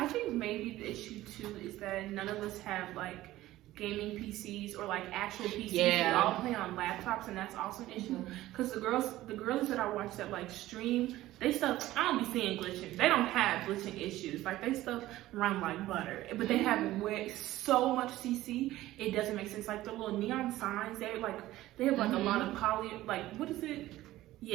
think maybe the issue too is that none of us have like gaming PCs or like actual PCs. Yeah. We all play on laptops, and that's also an issue because the girlies that I watch that like stream, they stuff, I don't be seeing glitching. They don't have glitching issues. Like they stuff run like butter, but they have so much CC, it doesn't make sense. Like the little neon signs, they have like a lot of poly, like what is it?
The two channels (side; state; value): left; quieter; 15.8 dB